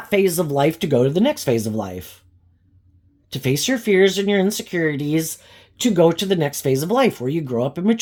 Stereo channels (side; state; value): both; identical; correlation 1.00